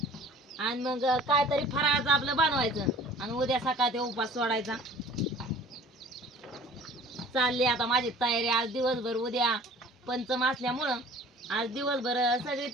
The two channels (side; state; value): both; normal; correlation 0.48